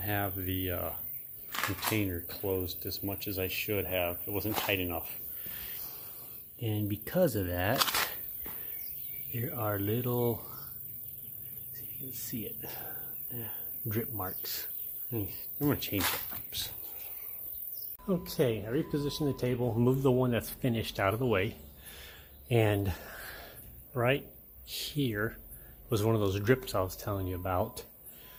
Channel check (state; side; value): identical; both; correlation 1.00